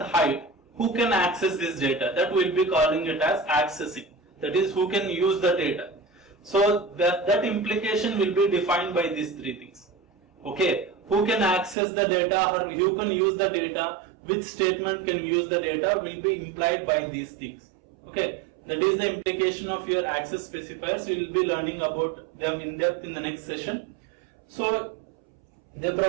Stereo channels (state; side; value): drops out; left; at 11.8 s